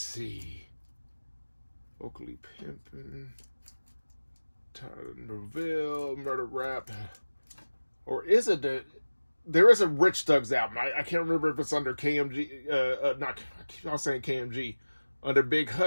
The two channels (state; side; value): inverted; both; correlation -1.00